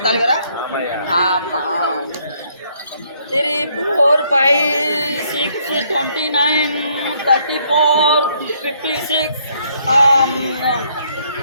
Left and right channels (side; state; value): both; inverted; correlation -0.68